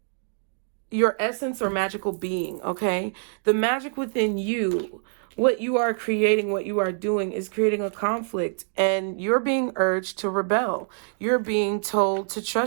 your essence or magical being, okay? The magic within you, what you are creating, what you are doing is creating a conflict, and you're being urged to rebel. You're being told to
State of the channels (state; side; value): silent; left; digital silence